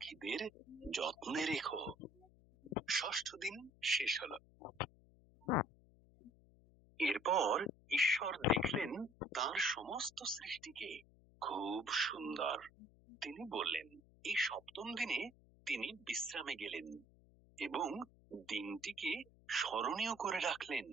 যত্নে রেখো। ষষ্ঠ দিন শেষ হলো। এরপর ঈশ্বর দেখলেন তার সমস্ত সৃষ্টিকে খুব সুন্দর। তিনি বললেন, এই সপ্তম দিনে তিনি বিশ্রামে গেলেন এবং দিনটিকে স্মরণীয় করে রাখলেন।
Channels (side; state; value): left; noise; hum, 26 dB below the sound